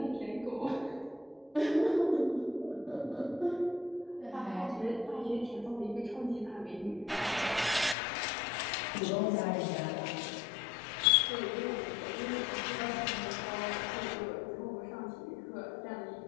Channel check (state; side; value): drops out; right; at 8.0 s